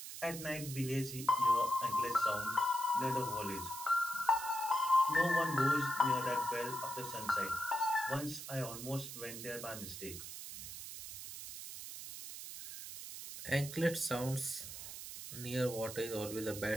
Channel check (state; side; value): noise; right; hiss, 9 dB below the sound